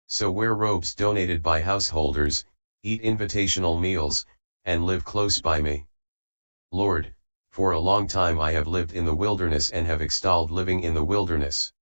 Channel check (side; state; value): both; inverted; correlation -1.00